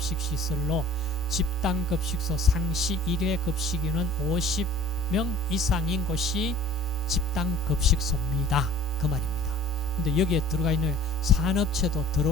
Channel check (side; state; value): both; normal; correlation 0.48